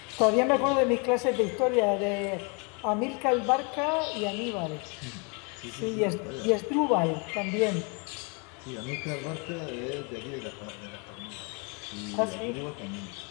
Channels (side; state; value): right; quieter; 33.6 dB